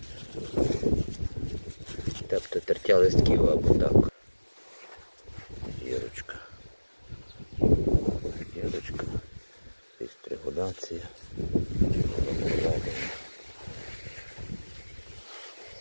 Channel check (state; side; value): inverted; both; correlation -1.00